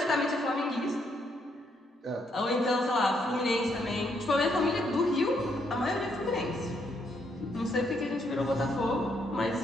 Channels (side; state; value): both; normal; correlation 0.74